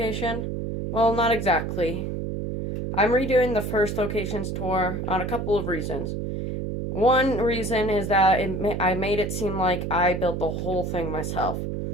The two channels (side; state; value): right; noise; hum, 3 dB below the sound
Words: Well, not exactly. I'm redoing the first location's tour on a couple of reasons. One reason is that I made it seem like I built the whole thing myself.